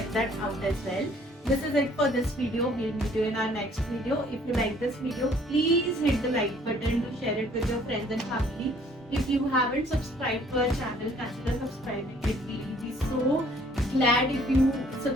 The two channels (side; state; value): both; normal; correlation 0.59